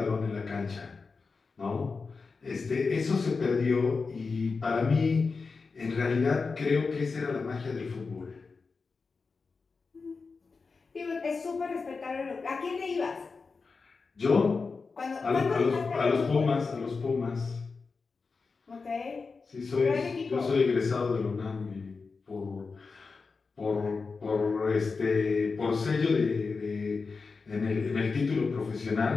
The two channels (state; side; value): quieter; right; 4.5 dB